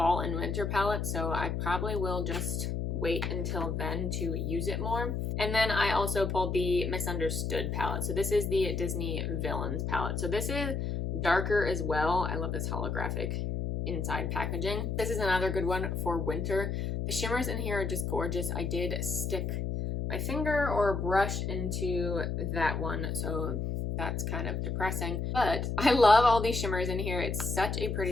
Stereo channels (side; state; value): left; noise; hum, 1 dB below the sound